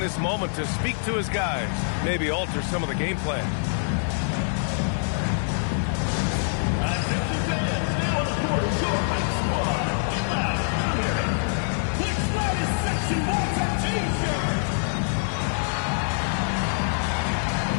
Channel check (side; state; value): right; silent; digital silence